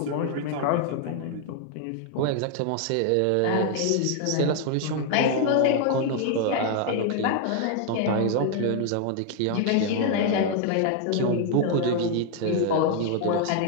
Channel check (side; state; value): both; different; correlation 0.00